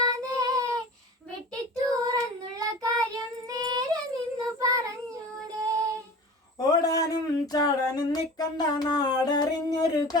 വെട്ടിത്തൂറന്നുള്ള കാര്യം നേരെ നിന്നു പറഞ്ഞൂടെ. ഓടാനും ചാടാനും നിക്കണ്ട നാടറിഞ്ഞൊരു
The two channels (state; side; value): normal; both; correlation 0.37